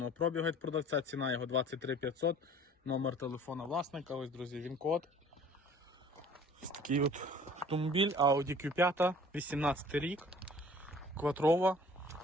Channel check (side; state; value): both; normal; correlation 0.50